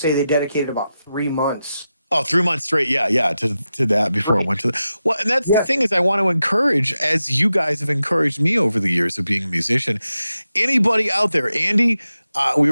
they dedicated about 3 months. Oh, 3 months straight. Yeah. To that before I went to the, well, and that's the thing is I want to encourage, as you guys have encouraged me over the years of being a musician, anybody out there, Andy, we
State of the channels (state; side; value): inverted; both; correlation -0.91